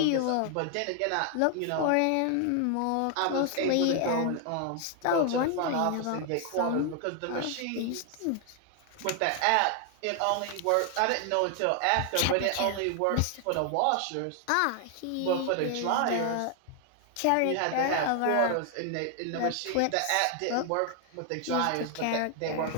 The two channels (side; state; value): both; different; correlation 0.00